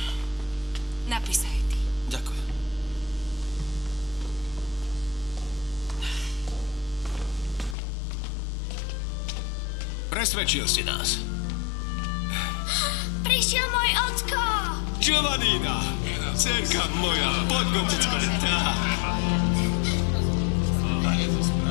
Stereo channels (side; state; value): right; drops out; at 7.8 s